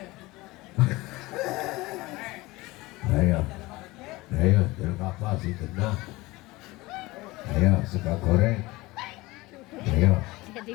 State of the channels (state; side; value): quieter; right; 20.8 dB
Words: Ayo, jeruk apa sih kena? Ayo, suka goreng. Ayo. Jadi